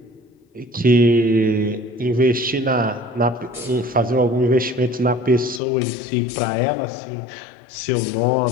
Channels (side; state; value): right; drops out; at 5.6 s